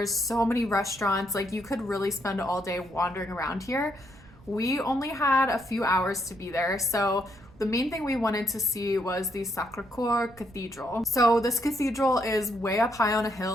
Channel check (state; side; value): noise; right; rumble, 23 dB below the sound